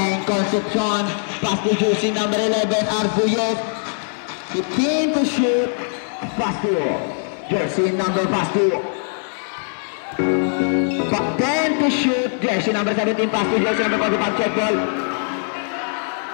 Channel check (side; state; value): right; silent; 65 dB below the other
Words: Concepcion. Pass to jersey number 11, Arbuyes. 15 to shoot. Pass to jersey number, pass to 10 to shoot. Jersey number 17, pass to jersey number 45, check ball.